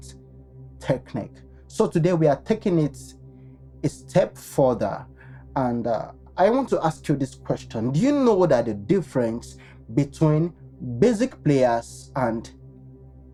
technique. So today we are taking it a step further, and I want to ask you this question. Do you know that the difference between basic players and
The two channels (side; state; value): both; identical; correlation 1.00